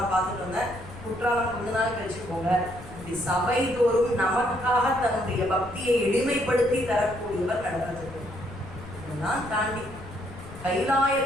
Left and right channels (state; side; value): noise; left; rumble, 15 dB below the sound